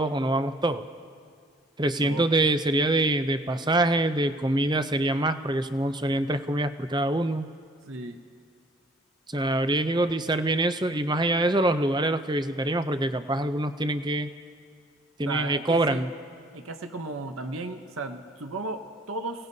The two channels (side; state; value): both; normal; correlation 0.57